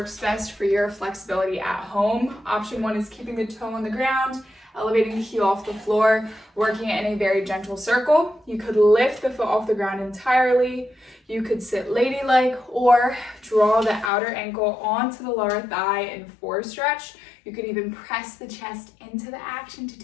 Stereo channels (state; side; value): drops out; right; at 14.1 s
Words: best for your flexibility at home. Option 1 is keeping the toe on the ground, elevating the heel off the floor, working it in a very gentle circle. You could lift the foot off the ground entirely. You could sit ladylike or draw the outer ankle onto the lower thigh in 4 stretch. You could even press the chest into the action to